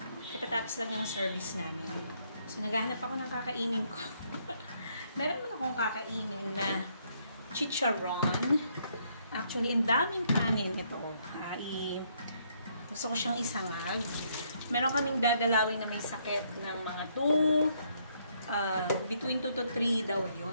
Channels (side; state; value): both; inverted; correlation -0.71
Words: katatapos lang yung service namin. So, naghahanap ako ng kakainin ko. Meron naman akong kakainin na chicharon. Actually, ang daming kanin ito. Gusto ko siyang isangag. Meron kaming dadalawin na may sakit ng mga between 2 to 3 daw